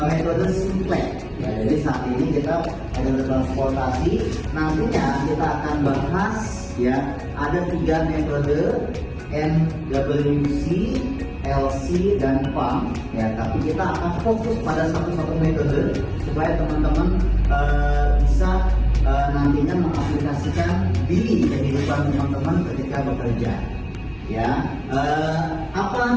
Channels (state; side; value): identical; both; correlation 1.00